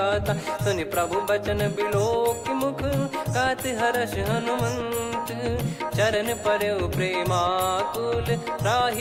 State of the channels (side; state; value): both; identical; correlation 1.00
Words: सुनि प्रभु बचन बिलोक मुख गात हर्ष हनुमंत। चरण परउ प्रेमाकुल